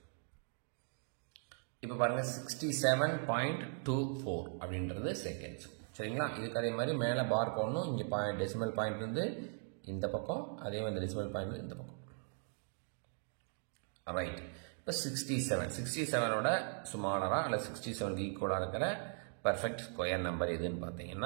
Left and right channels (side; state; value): left; silent; 52 dB below the other